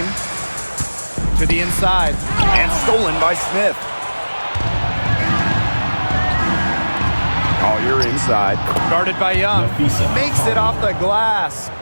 To the inside. And stolen by Smith. Collier inside. Guarded by Young. Makes it off the glass.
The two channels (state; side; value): inverted; both; correlation -1.00